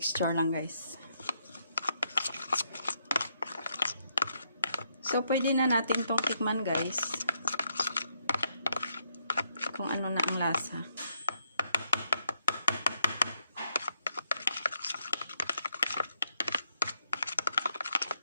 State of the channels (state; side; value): inverted; both; correlation -0.76